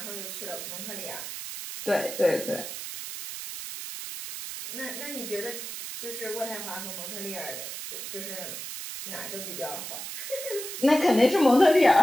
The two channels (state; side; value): noise; right; hiss, 8 dB below the sound